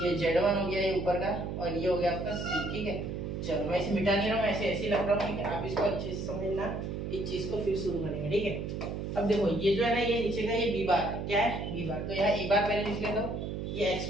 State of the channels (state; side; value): noise; right; hum, 4 dB below the sound